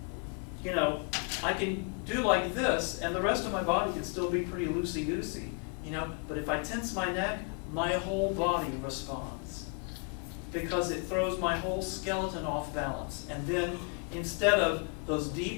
You know, I can do like this, and the rest of my body can still be pretty loosey-goosey, you know, but if I tense my neck, my whole body responds, because it throws my whole skeleton off balance. And then, instead of those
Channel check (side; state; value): right; quieter; 36.6 dB